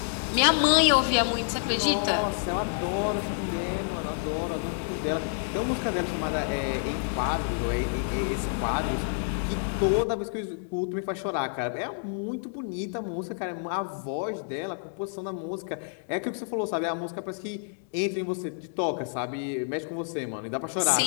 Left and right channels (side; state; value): right; silent; digital silence